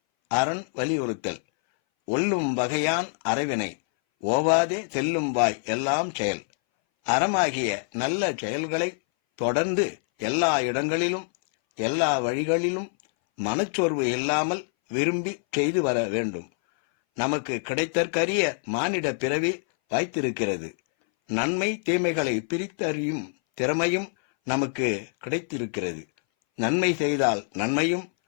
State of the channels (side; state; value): right; silent; 60 dB below the other